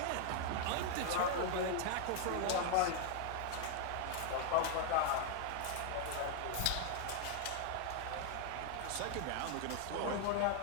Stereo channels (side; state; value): both; different; correlation 0.00